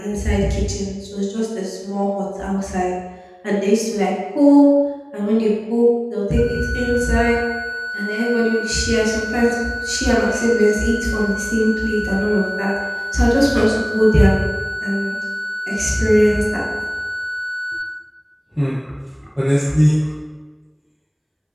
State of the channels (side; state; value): both; identical; correlation 1.00